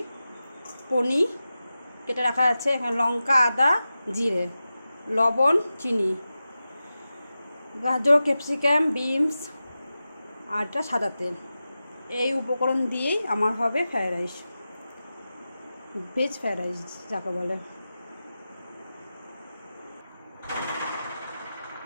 পনির কেটে রাখা আছে, এখানে লঙ্কা, আদা, জিরে, লবণ, চিনি, গাজর, ক্যাপসিকাম, বিনস আর একটা সাদা তেল। এই উপকরণ দিয়েই আমার হবে fried rice, veg fried rice যাকে বলে।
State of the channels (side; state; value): both; inverted; correlation -0.93